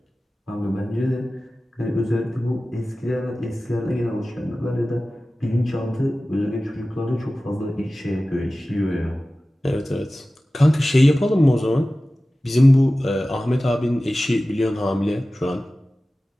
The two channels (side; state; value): both; normal; correlation 0.96